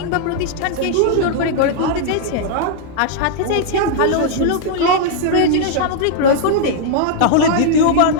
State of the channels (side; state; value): both; different; correlation -0.01